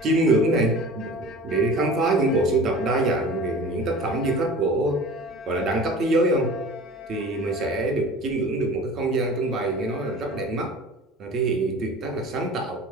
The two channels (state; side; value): normal; both; correlation 0.40